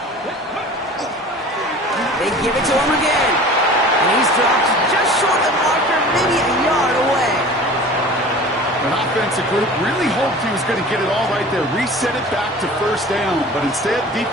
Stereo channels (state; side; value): normal; both; correlation 0.41